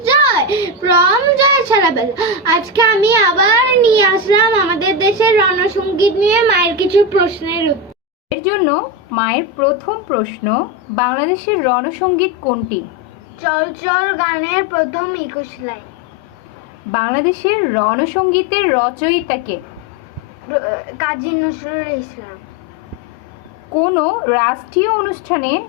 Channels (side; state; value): both; normal; correlation 0.15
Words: Joy from Joy ছাড়াবেল। আজকে আমি আবার নিয়ে আসলাম আমাদের দেশের রণসঙ্গীত নিয়ে মায়ের কিছু প্রশ্নের উত্তর। এর জন্য মায়ের প্রথম প্রশ্ন, বাংলাদেশের রণসঙ্গীত কোনটি? চল চল গানের প্রথম 21 লাইন। বাংলাদেশের রণসঙ্গীতের রচয়িতা কে? কাজী নজরুল ইসলাম। কোনো রাষ্ট্রীয় অনুষ্ঠানে